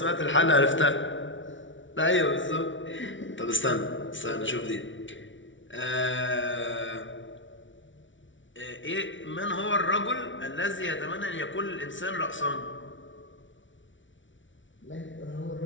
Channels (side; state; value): right; late; 0.56 ms